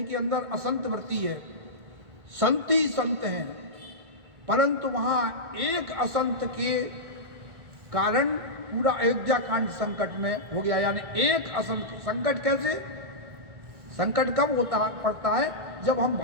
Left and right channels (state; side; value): late; left; 1.6 ms